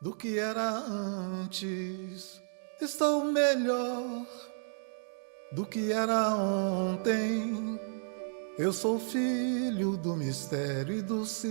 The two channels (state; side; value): silent; left; digital silence